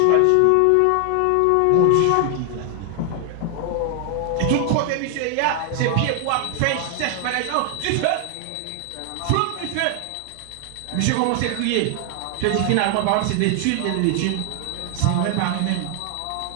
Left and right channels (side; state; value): both; different; correlation 0.00